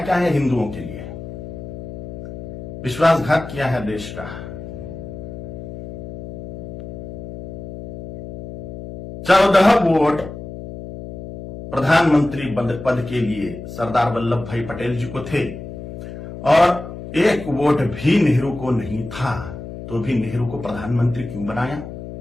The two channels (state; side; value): noise; left; hum, 11 dB below the sound